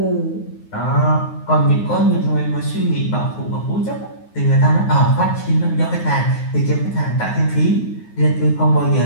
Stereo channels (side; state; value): right; late; 9.5 ms